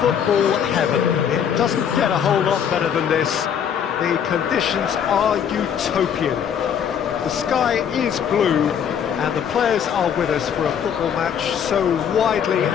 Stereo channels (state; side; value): quieter; right; 8.2 dB